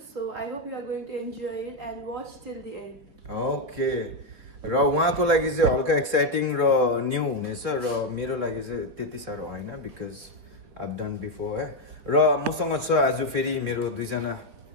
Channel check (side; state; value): left; late; 3.6 ms